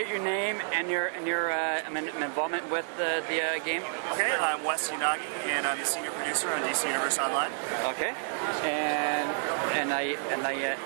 your name and your involvement with the game. Okay, I'm Wes Unagi, and I'm the senior producer on DC Universe Online. Okay, and I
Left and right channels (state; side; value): silent; left; digital silence